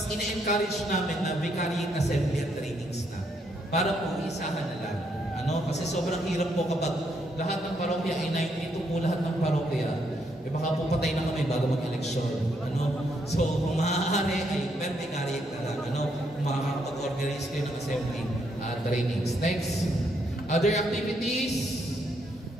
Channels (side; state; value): both; normal; correlation 0.75